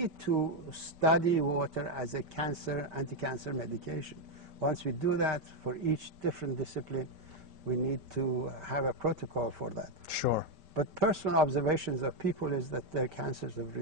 to study water as a anti-cancer medication. Once we do that, for each different discipline, we need to have a protocol for that. Sure. But personal observations of people is that their cancers have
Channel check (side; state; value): left; late; 5.1 ms